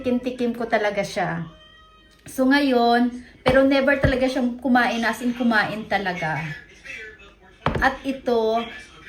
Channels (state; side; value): identical; both; correlation 1.00